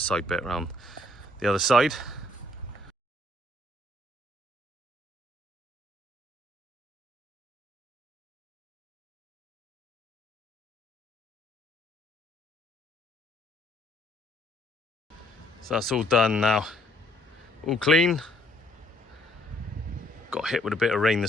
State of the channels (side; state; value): both; normal; correlation 0.66